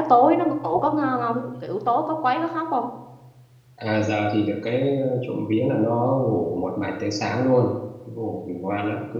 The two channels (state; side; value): identical; both; correlation 1.00